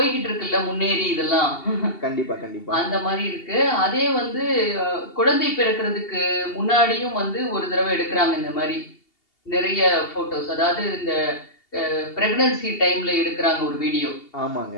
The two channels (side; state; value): right; late; 2.7 ms